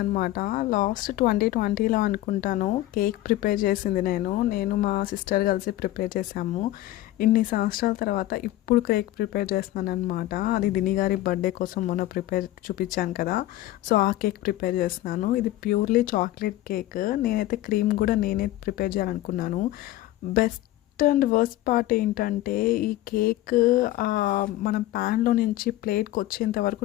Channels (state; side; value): quieter; right; 15.5 dB